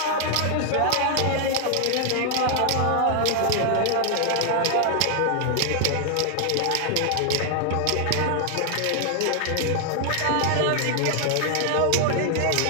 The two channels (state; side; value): different; both; correlation 0.00